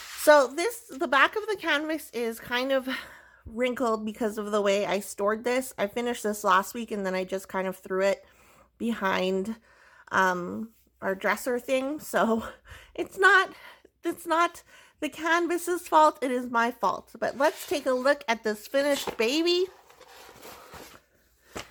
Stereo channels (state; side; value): identical; both; correlation 1.00